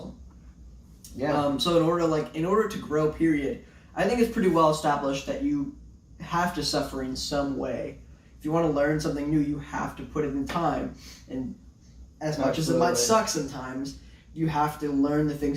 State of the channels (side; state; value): both; identical; correlation 1.00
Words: Yeah. So in order to grow, period, I think it's pretty well established that you have to suffer in some way. If you want to learn something new, you have to put it in time. And as much as it might suck sometimes, you have to learn the